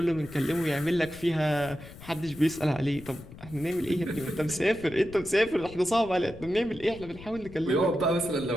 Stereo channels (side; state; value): left; noise; rumble, 17 dB below the sound